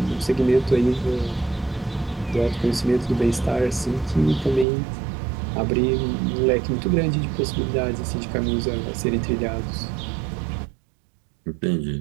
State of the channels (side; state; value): left; drops out; at 4.7 s